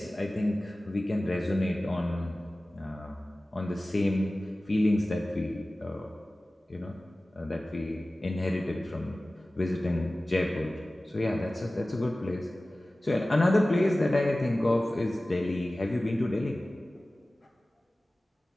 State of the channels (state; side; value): normal; both; correlation 0.97